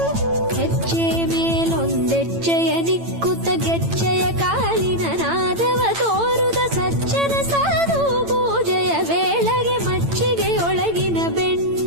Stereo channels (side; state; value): left; late; 8.9 ms